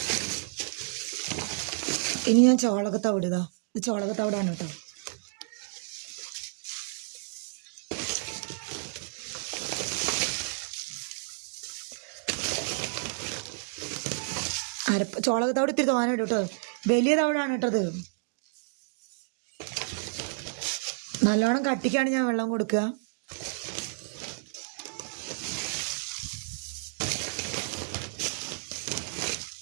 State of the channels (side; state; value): left; silent; digital silence